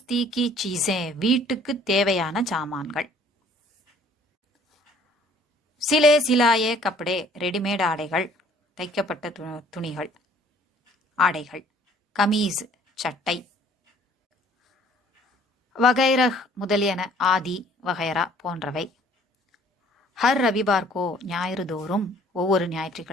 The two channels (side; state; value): both; normal; correlation 0.57